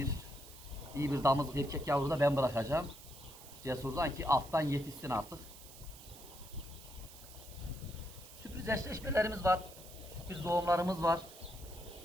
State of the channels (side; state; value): right; noise; hiss, 17 dB below the sound